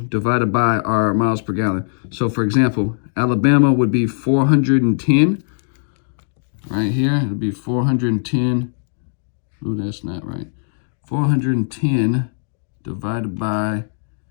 by our miles per gallon. So for example, Alabama would be 410. Right here, it'll be 410. Ooh, that's not right. 410 divided by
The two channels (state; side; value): silent; right; digital silence